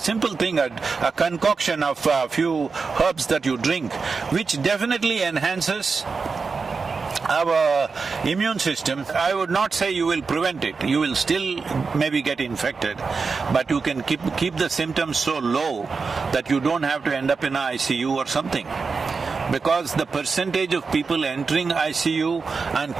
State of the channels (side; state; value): left; quieter; 4.8 dB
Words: thing, a concoction of a few herbs that you drink, which definitely enhances our immune system. I would not say you will prevent it. You will still maybe get infected, but you can keep the symptoms so low that you don't have to end up in an ICU or something. Because the percentage of people entering ICU and